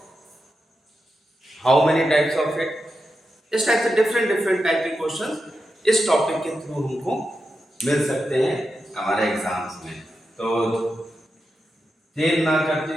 how many types of it, इस टाइप से डिफरेंट टाइप के क्वेश्चन इस टॉपिक के थ्रू हमको मिल सकते हैं हमारे एग्जाम्स में। तो देर ना करते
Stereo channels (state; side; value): normal; both; correlation 0.89